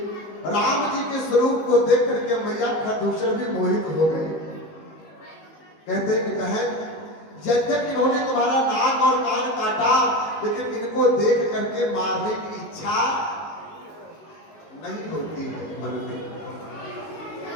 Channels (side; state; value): right; late; 19 ms